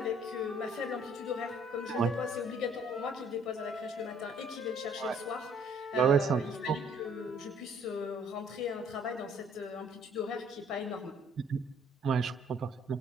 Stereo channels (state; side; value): normal; both; correlation 0.60